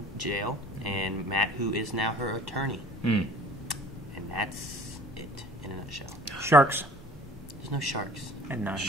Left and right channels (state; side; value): normal; both; correlation 0.49